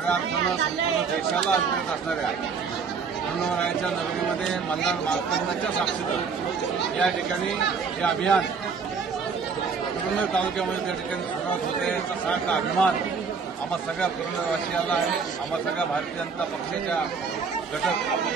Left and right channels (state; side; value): quieter; left; 5.5 dB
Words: अर्थानं संपूर्ण देशाला अभिप्रेत असणाऱ्या खंडोबारायाच्या नगरीमध्ये मल्हार मार्तंडाच्या साक्षीने या ठिकाणी हे अभियान पुरंदर तालुक्यामध्ये त्या ठिकाणी सुरुवात होते याचा सारखा अभिमान आम्हा सगळ्या पुरंदरवासियाला आहे, आम्हा सगळ्या भारतीय जनता पक्षाच्या घटक